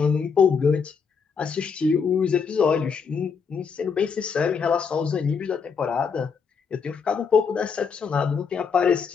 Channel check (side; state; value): right; quieter; 5.9 dB